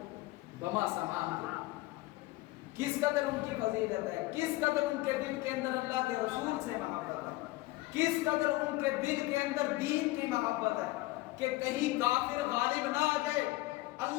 بما سامان کے۔ کس قدر ان کی فضیلت ہے، کس قدر ان کے دل کے اندر اللہ کے رسول سے محبت ہے، کس قدر ان کے دل کے اندر دین کی محبت ہے کہ کہیں کافر غالب نہ آ جائے،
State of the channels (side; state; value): right; quieter; 19.3 dB